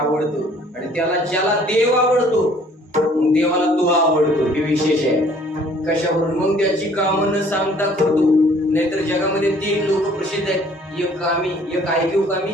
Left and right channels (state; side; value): normal; both; correlation 0.57